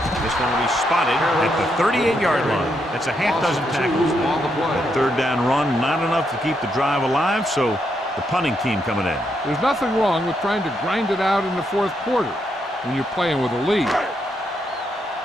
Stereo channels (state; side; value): normal; both; correlation 0.79